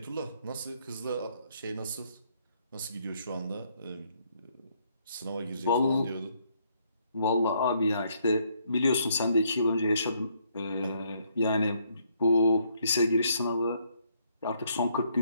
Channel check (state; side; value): inverted; both; correlation -0.70